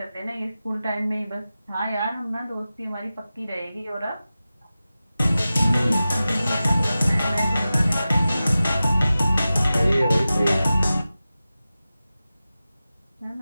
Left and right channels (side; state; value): both; inverted; correlation -0.95